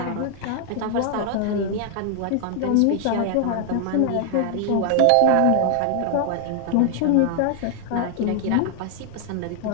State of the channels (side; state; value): both; different; correlation -0.01